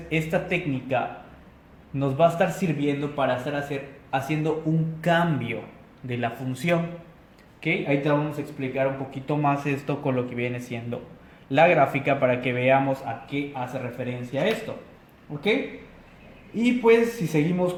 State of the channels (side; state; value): both; identical; correlation 1.00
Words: esta técnica nos va a estar sirviendo para estar haciendo un cambio de la función. ¿Ok? Ahí te vamos a explicar un poquito más esto con lo que viene siendo la gráfica para que veamos a qué hace referencia esto. ¿Ok? Y pues si seguimos